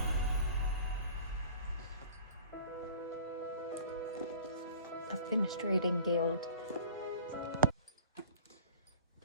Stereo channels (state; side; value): inverted; both; correlation -0.43